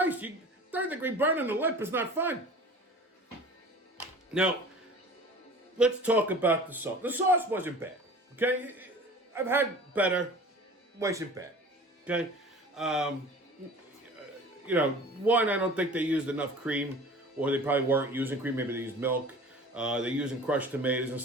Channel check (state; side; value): normal; both; correlation 0.42